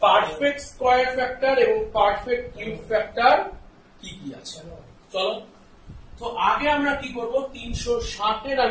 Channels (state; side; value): identical; both; correlation 1.00